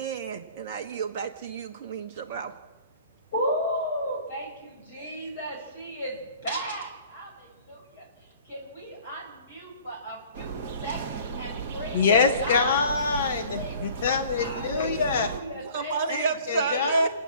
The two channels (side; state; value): both; inverted; correlation -0.50